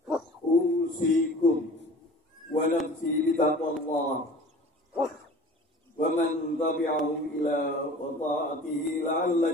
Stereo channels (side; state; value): both; normal; correlation 0.44